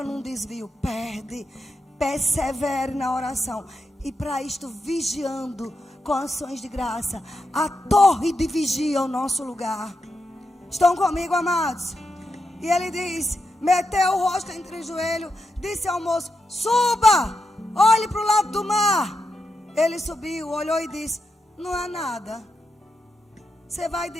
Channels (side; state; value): both; normal; correlation 0.86